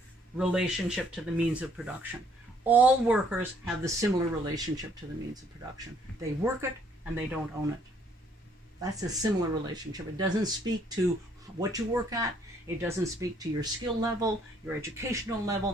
relationship to the means of production. All workers have the similar relationship to the means of production. They work it and they don't own it. That's a similar relationship. It doesn't speak to what you work at. It doesn't speak to your skill level, your educational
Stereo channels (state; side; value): normal; both; correlation 0.65